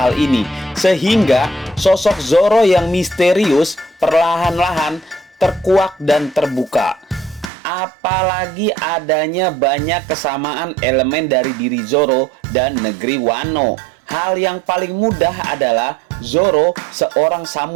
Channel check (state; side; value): drops out; left; at 7.5 s